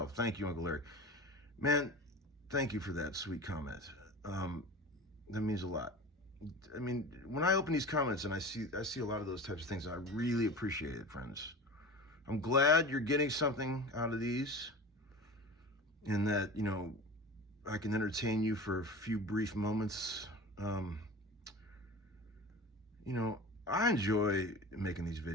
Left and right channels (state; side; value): normal; both; correlation 0.34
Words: Thank you, Uncle Larry. Man, thank you for that sweet comment. That means a lot. I mean, when I open these comments and I see a lot of those types of things, I really appreciate it, friends. I'm glad you're getting something out of these, and that, you know, I can entertain you for a few brief moments. You know, I enjoy making these